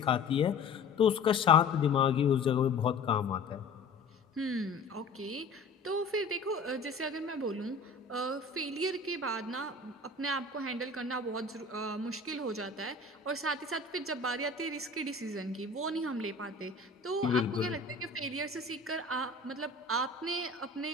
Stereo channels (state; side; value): quieter; right; 3.8 dB